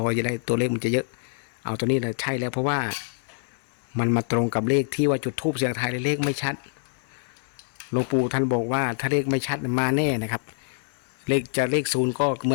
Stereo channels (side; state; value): right; silent; digital silence